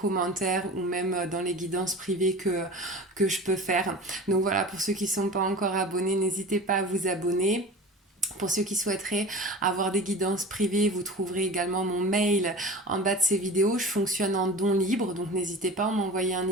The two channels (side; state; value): both; normal; correlation 0.34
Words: ou même dans les guidances privées que je peux faire. Donc voilà, pour ceux qui ne sont pas encore abonnés, n'hésitez pas à vous abonner. Pour ceux qui souhaiteraient avoir des guidances privées, vous trouverez également mon mail en bas de ces vidéos. Je fonctionne en don libre, donc n'hésitez pas à m'envoyer un